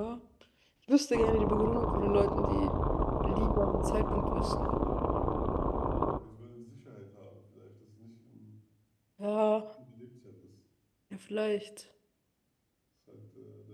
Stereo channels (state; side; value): identical; both; correlation 1.00